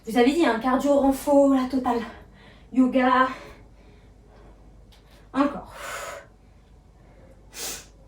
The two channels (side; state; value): both; identical; correlation 1.00